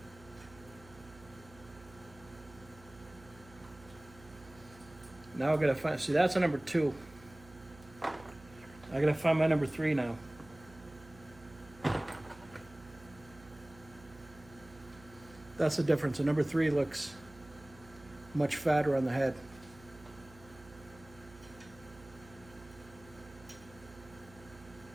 Now I gotta find, see that's a number 2. I gotta find my number 3 now. That's the difference. The number 3 looks much fatter on the head.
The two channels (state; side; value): noise; right; hum, 21 dB below the sound